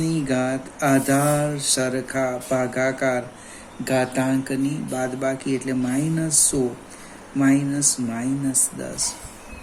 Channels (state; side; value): identical; both; correlation 1.00